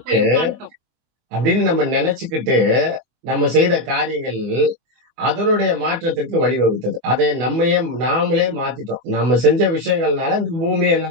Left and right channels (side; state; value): left; late; 24 ms